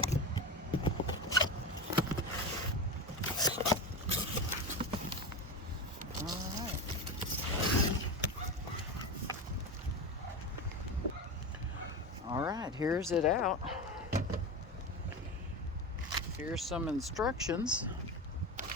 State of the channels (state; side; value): normal; both; correlation 0.22